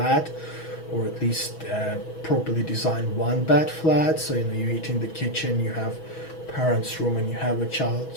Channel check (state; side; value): late; right; 6.2 ms